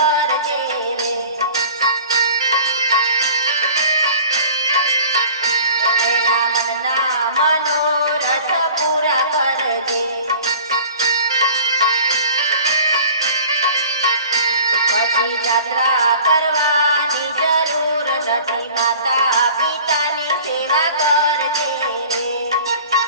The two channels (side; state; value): both; inverted; correlation -0.44